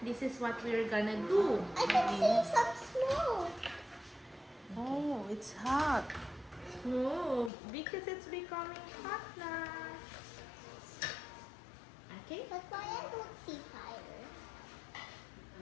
this is what we're gonna do. I can see some smoke. Oh, it's hot. No, because it's becoming hot now. Okay? But why I don't see fire?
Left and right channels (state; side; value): drops out; right; at 7.5 s